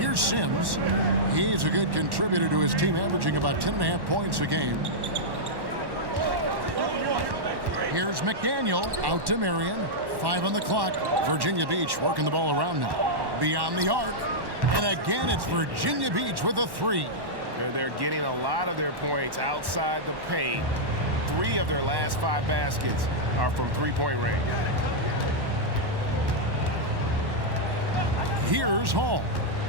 Sims. He's a good contributor to his team, averaging about 10.5 points a game. Here's McDaniel out to Marion. 5 on the clock. Virginia Beach working the ball around now. Beyond the arc. And again, it's Virginia Beach with a 3. They're getting a lot of their points outside the paint. 3 of their last 5 baskets are from three-point range. Here's Hall.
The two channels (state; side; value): late; left; 1.1 ms